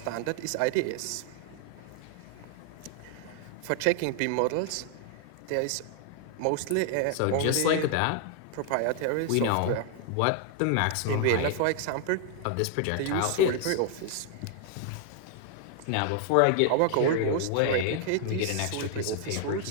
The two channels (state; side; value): different; both; correlation 0.00